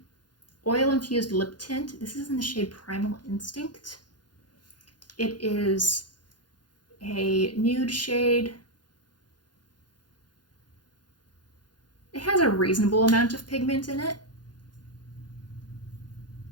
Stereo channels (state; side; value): late; right; 0.70 ms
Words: Oil Infused Lip Tint. This is in the shade Primal Instinct. It is a nude shade. It has a reasonable amount of pigment in it.